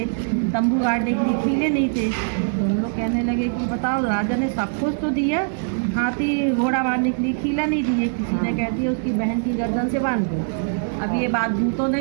तंबू गाड़ने के लिए कीले नहीं थे। तो हम लोग कहने लगे कि बताओ राजा ने सब कुछ तो दिया, हाथी घोड़ा बांधने के लिए कीला नहीं दिए। किसी ने कह दिया उसकी बहन की गर्दन से बांध दो। अब ये बात दूतों ने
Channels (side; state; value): left; silent; 64 dB below the other